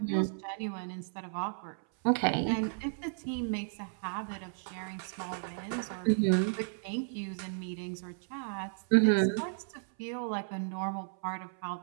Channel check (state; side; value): silent; left; 55 dB below the other